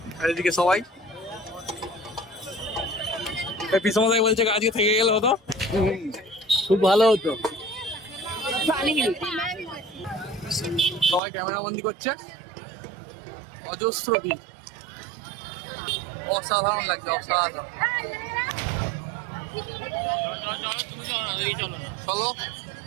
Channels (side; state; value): left; drops out; at 11.2 s